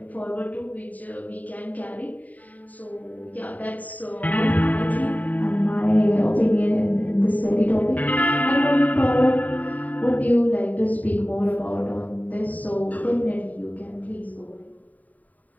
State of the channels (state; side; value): late; right; 0.075 ms